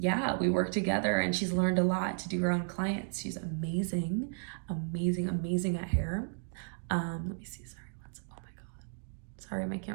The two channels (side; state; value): left; silent; digital silence